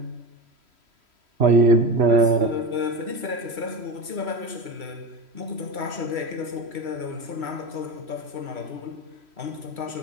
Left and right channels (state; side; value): late; left; 3.1 ms